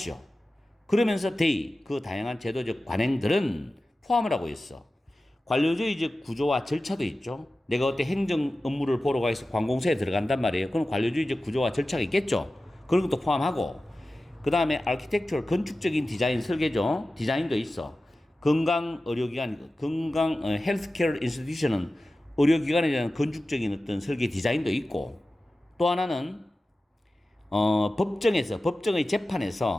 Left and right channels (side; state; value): both; normal; correlation 0.95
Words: 그러면서 그 다양한 제도적 관행들은 포함을 하고 있어. 관료주의적 구조와 절차도 있죠. 내가 어때 행정 업무를 보러 가서 관공서에 들어간단 말이에요. 그럼 관료주의적 구조와 절차가 있겠죠. 그런 것도 포함하고 그 다음에 아키텍처럴 건축적인 디자인 설계죠. 디자인도 있어. 헬스케어 인스티튜션은 의료기관에 대한 건축적인 어떤 설계 디자인도 있고 또 하나는 법정의